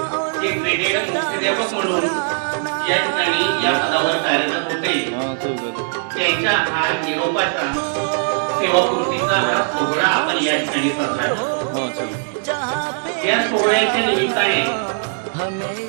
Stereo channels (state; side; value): silent; left; digital silence